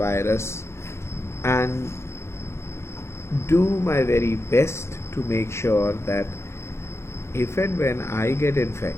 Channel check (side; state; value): right; late; 0.13 ms